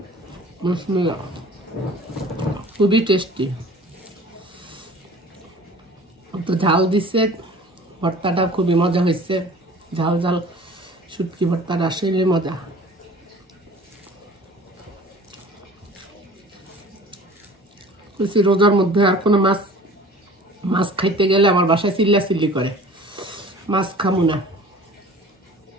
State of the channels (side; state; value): both; normal; correlation 0.45